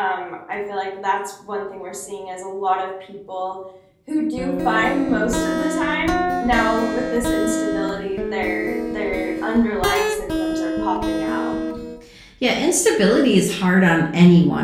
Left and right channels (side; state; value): both; identical; correlation 1.00